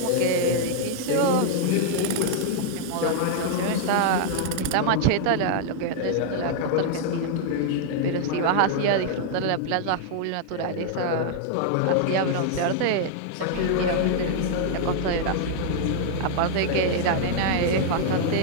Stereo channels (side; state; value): both; different; correlation -0.01